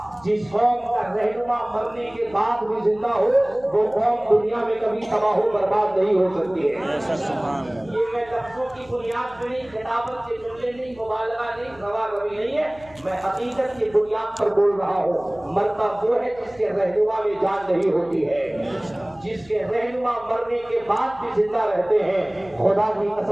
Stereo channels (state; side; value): noise; left; hum, 24 dB below the sound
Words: जिस कौम का रहनुमा मरने के बाद भी जिंदा हो वो कौम दुनिया में कभी तबाह बर्बाद नहीं हो सकती है। ये मैं लफ्जों की बुनियाद पे नहीं, किताबत के जुमले नहीं, मुबालगा नहीं, रवा-रवी नहीं है, मैं हकीकत की बुनियाद पर बोल रहा हूँ। मरता वो है जिसके रहनुमा में जान नहीं होती है, जिसके रहनुमा मरने के बाद भी जिंदा रहते हैं। खुदा की